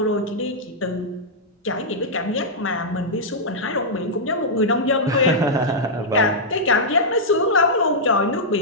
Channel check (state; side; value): normal; both; correlation -0.09